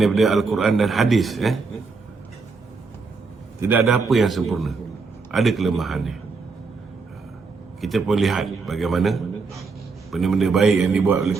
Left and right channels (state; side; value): quieter; left; 4.5 dB